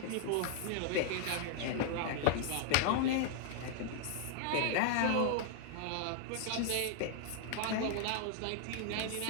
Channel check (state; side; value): different; both; correlation 0.00